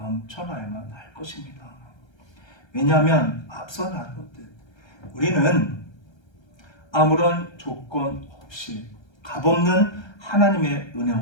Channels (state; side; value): late; right; 1.3 ms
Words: 할 것입니다. 왜냐하면 앞서 나눴듯 우리는 아무런 조건 없이 값없는 하나님의